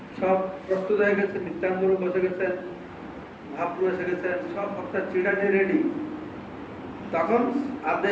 সব প্রস্তুত হয়ে গেছে, নিত্যানন্দ প্রভু বসে গেছেন, মহাপ্রভু এসে গেছেন, সব ভক্তের চিড়া নিয়ে রেডি। তখন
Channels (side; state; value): both; identical; correlation 1.00